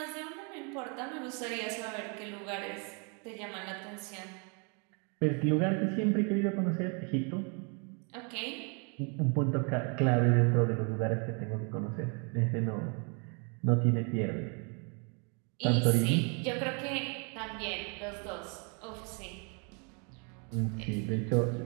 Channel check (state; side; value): quieter; left; 35.8 dB